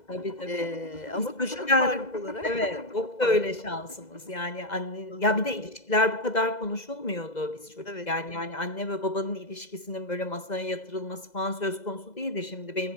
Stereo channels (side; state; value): right; late; 2.0 ms